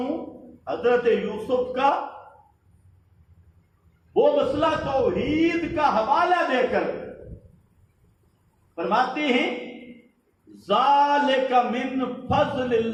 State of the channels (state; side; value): identical; both; correlation 1.00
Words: حضرت یوسف کا، وہ مسئلہ توحید کا حوالہ دے کر فرماتے ہیں ذالک من فضل